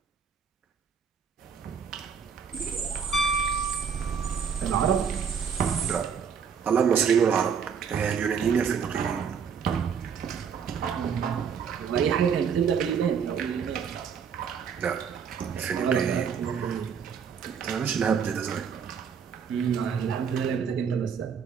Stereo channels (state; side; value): quieter; left; 6.9 dB